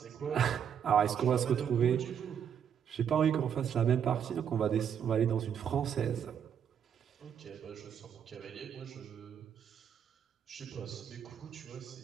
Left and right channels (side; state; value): left; quieter; 8.3 dB